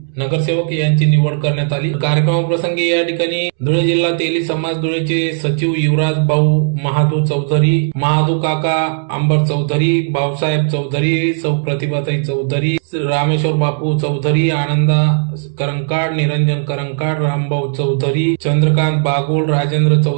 नगरसेवक यांची निवड करण्यात आली। कार्यक्रमाप्रसंगी या ठिकाणी धुळे जिल्हा तेली समाज धुळेचे सचिव युवराज भाऊ महादू चौधरी, महादू काका अंबर चौधरी, भाऊसाहेब चौधरी, सौ प्रतिभाताई चौधरी, रामेश्वर बापू चौधरी, आनंदा करंकाड, निरंजन करंकाड, रामभाऊ चौधरी, चंद्रकांत बागुल, राजेंद्र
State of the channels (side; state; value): left; silent; 69 dB below the other